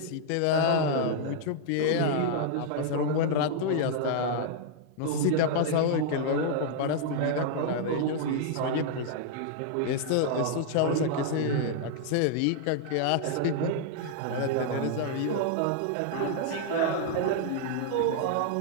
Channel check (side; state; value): both; different; correlation -0.01